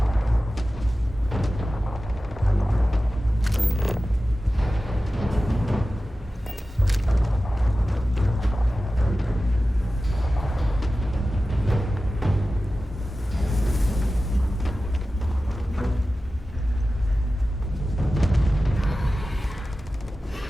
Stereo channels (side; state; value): both; normal; correlation 0.95